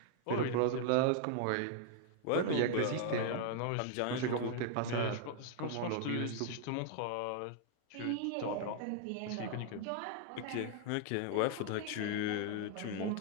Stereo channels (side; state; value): both; different; correlation -0.01